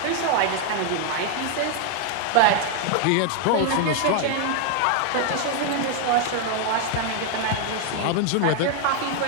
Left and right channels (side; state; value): both; different; correlation 0.00